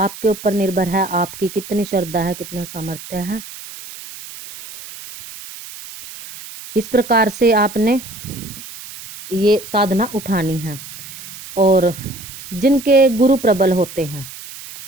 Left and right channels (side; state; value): right; noise; hiss, 14 dB below the sound